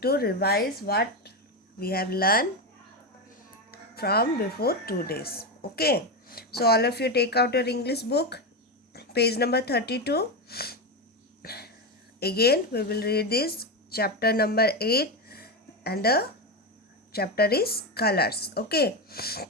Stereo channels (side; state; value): both; normal; correlation 0.13